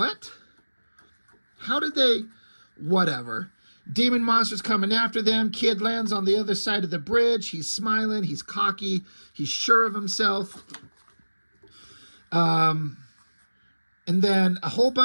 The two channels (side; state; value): both; inverted; correlation -1.00